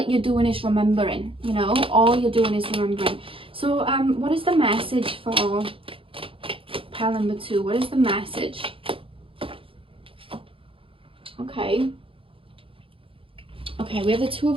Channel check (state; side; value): late; left; 0.26 ms